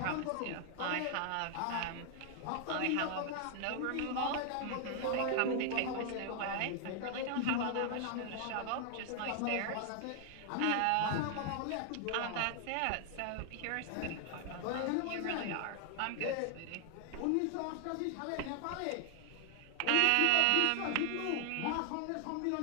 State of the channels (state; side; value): different; both; correlation 0.00